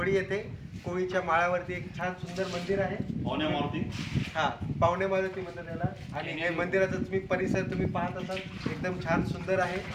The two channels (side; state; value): both; identical; correlation 1.00